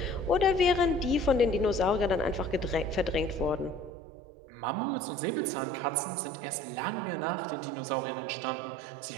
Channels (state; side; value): drops out; left; at 3.9 s